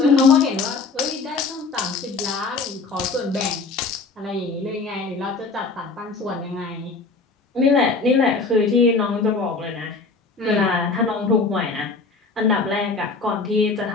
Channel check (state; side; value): quieter; right; 4.1 dB